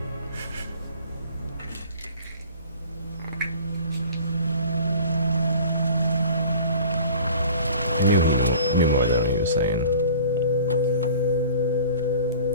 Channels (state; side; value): inverted; both; correlation -0.45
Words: I knew more than he was saying.